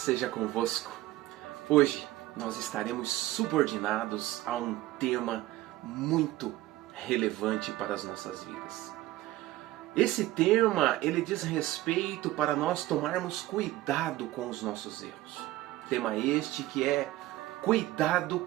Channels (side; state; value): left; quieter; 16.4 dB